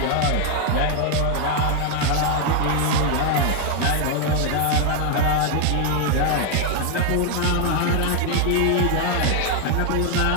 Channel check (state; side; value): different; both; correlation 0.00